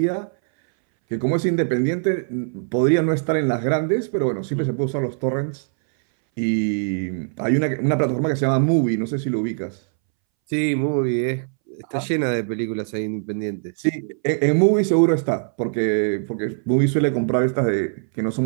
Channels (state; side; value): silent; left; 63 dB below the other